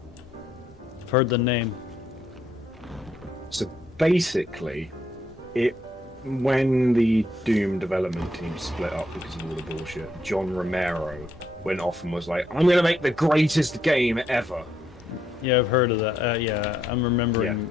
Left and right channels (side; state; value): both; normal; correlation 0.75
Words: I've heard the name. So basically, when the Doom development team split up because of all the bullshit, John Romero went off and was like, "I'm going to make the greatest game ever." Yeah, I've heard of that. Yeah, I'm